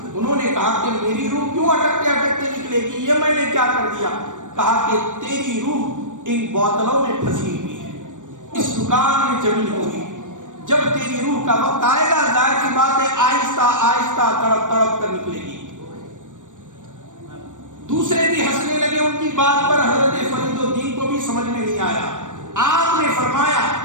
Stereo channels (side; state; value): left; late; 0.87 ms